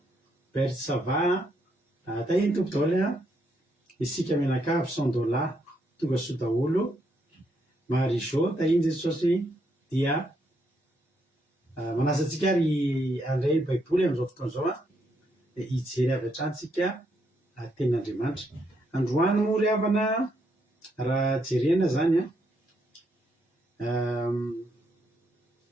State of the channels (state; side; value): normal; both; correlation 0.76